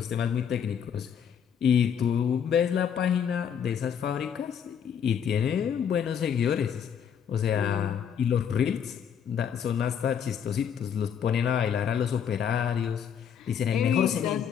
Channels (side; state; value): right; quieter; 8.0 dB